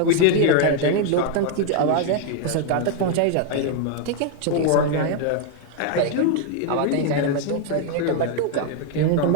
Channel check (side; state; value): both; different; correlation 0.00